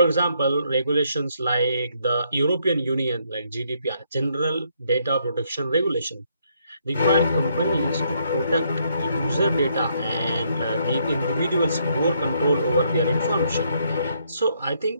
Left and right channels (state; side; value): inverted; both; correlation -0.72